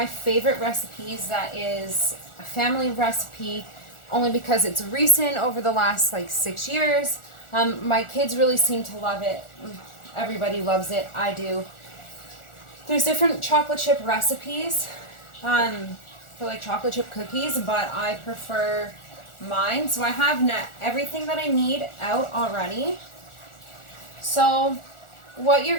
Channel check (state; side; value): late; right; 1.4 ms